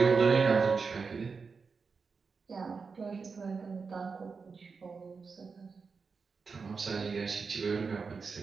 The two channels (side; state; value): left; quieter; 5.0 dB